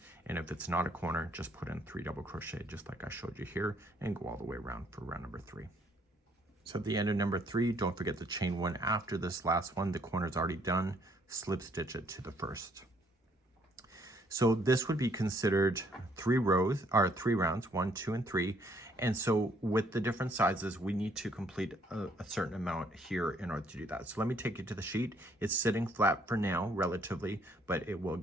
And if it's not a corner, just put in 3 double crochet, just like I showed you here, and go all the way around for round number 3. So at the end of number 3, don't forget to chain 1 after this last one. The corner's already done. Slip stitch it to the first. So this would be considered 3 rows, or 3 rounds, 1, 2, and 3. And so with the different sizes, we need to complete a certain amount here in order to do that. So let me take you to the sheet. It's sitting flat for now, relatively, but it will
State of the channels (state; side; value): normal; both; correlation 0.66